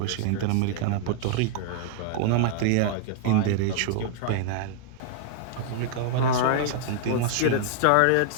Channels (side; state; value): both; different; correlation -0.01